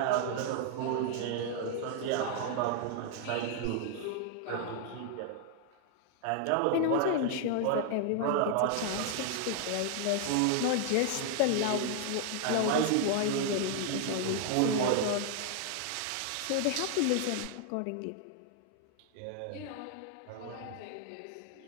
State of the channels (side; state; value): both; different; correlation 0.00